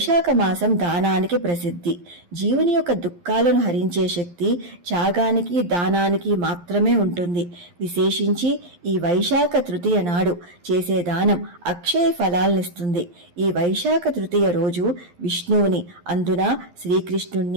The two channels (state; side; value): late; left; 11 ms